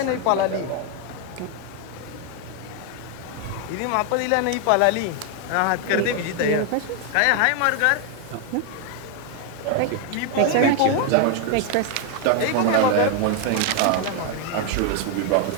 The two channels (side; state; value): both; different; correlation 0.01